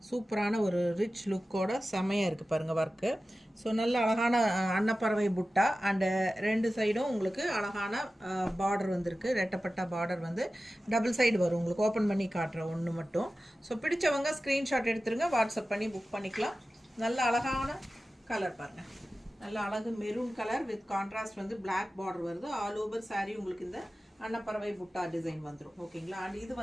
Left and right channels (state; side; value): normal; both; correlation 0.95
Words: சூப்பரான ஒரு ரிச் லுக்கோட செமையாக இருக்குது பாருங்கள் ஒர்க்கு. ஸோ நல்ல அழகான அன்னப்பறவை புட்டா அண்டு ரெண்டு சைடும் உங்களுக்கு அழகான பார்டர் வந்திருக்கு. ரெட்டப்பட்ட பார்டர் வந்து டபுள் சைடு வரும் உங்களுக்கு. ஓப்பன் பண்ணி காட்டுற ஒன்று மட்டும். ஸோ பிடிச்சவங்க ஸ்க்ரீன்ஷாட் எடுத்துருங்க, வாட்ஸ்அப் பண்ணி புக் பண்ணிக்கலாம். நல்ல அழகான கலர் பாருங்கள், நல்ல அழகு மெரூன் கலர் வித் கான்ட்ராஸ்ட் வந்து பிளாக் பார்டர் வருது. ஆல் ஓவர் saree உங்களுக்கு இந்த அன்னப்பறவை புட்டா டிசைன் வந்துடும். ஓகேங்களா? அண்ட் இது